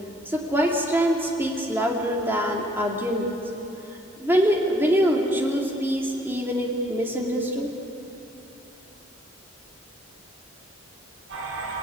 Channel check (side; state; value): both; normal; correlation 0.63